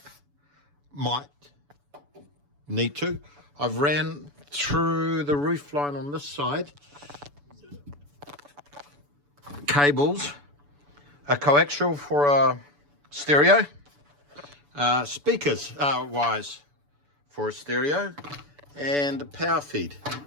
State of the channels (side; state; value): left; late; 7.0 ms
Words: Might need to. I've ran through the roof line on this side cables, a coaxial for a stereo, speakers wires for a stereo, and a power feed